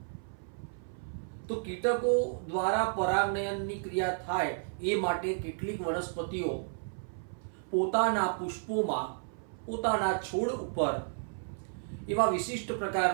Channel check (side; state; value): left; silent; 56 dB below the other